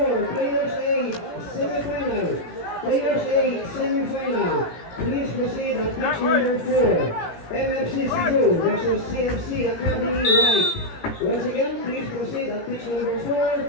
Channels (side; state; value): right; late; 17 ms